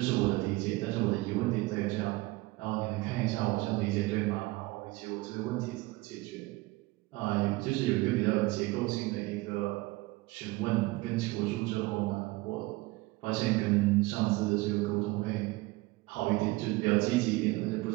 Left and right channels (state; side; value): quieter; left; 21.3 dB